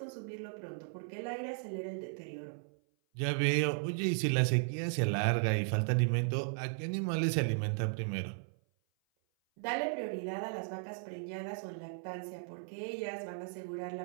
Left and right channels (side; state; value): left; silent; 54 dB below the other